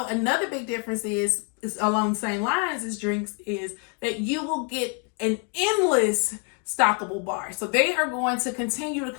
another big difference is along the same lines as drinks is that you will get an endless stockable bar. So they are going to continue to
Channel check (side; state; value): right; quieter; 37.4 dB